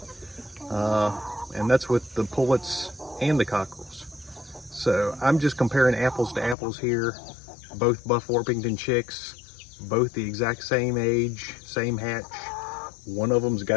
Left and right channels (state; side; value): drops out; right; at 6.6 s